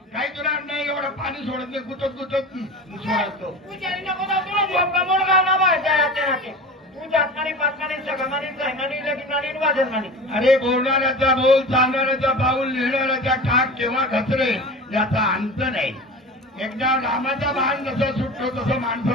काही तुला नाही एवढं पाणी सोडत नाही गुतत गुतत सोडतो अरे बोलणाऱ्याचा बोल चालणाऱ्याचा पाऊल लिहिणाऱ्याचा ठाक केव्हा घसरे याचा अंत नाही एकदा रामाचा बाण जसा सुटतो तसं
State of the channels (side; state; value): both; normal; correlation 0.33